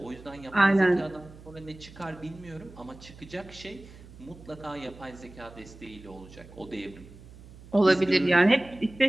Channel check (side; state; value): right; noise; hum, 19 dB below the sound